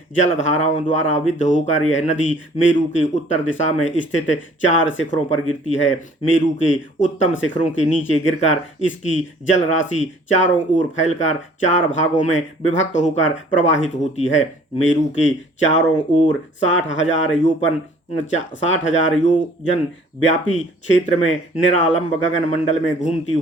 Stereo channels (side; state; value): both; normal; correlation 0.55